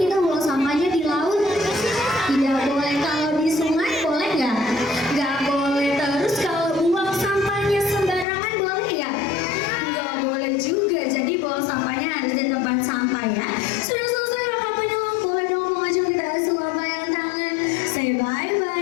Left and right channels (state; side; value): drops out; right; at 8.2 s